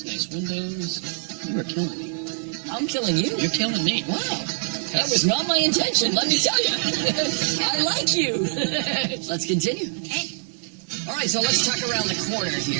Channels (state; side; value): silent; left; digital silence